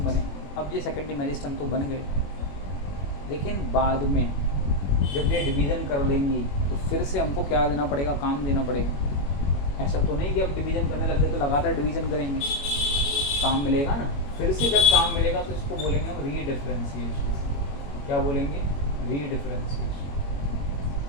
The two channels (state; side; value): late; right; 21 ms